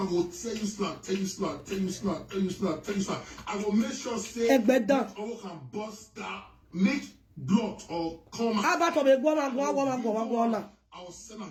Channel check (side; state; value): both; identical; correlation 1.00